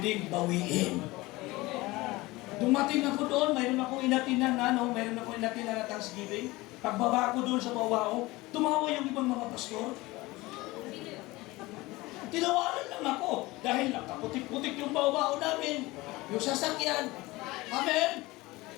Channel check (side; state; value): right; quieter; 20.8 dB